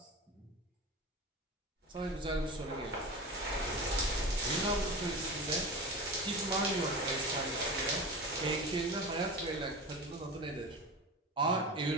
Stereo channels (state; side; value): normal; both; correlation 0.28